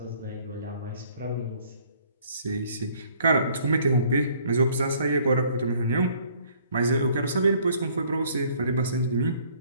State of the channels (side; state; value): both; inverted; correlation -0.60